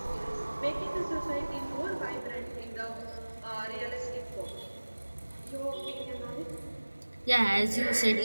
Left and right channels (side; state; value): both; inverted; correlation -1.00